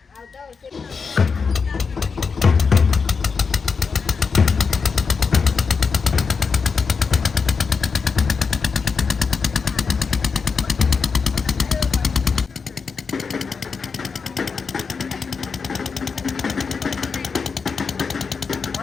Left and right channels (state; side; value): quieter; right; 5.3 dB